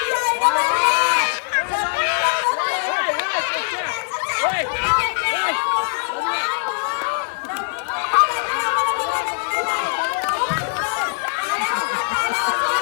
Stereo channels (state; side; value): silent; right; digital silence